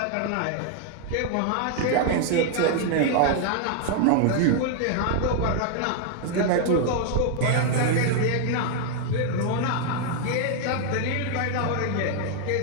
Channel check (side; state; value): both; different; correlation 0.00